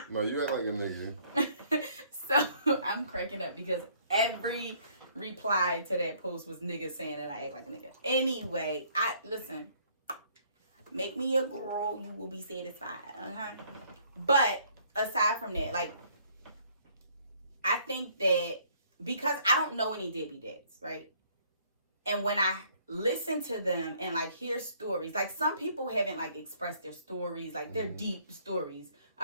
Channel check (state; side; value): inverted; both; correlation -0.62